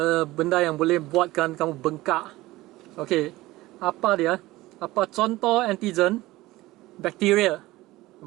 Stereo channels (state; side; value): quieter; left; 18.3 dB